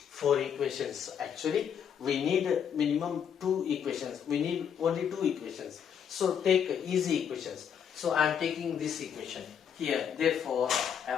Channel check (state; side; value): quieter; right; 8.1 dB